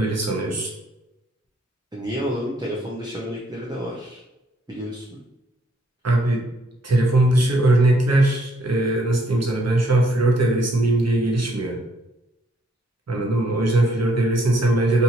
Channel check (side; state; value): both; normal; correlation 0.69